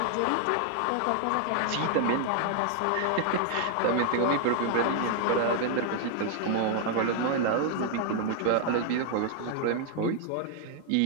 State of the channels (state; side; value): different; both; correlation 0.00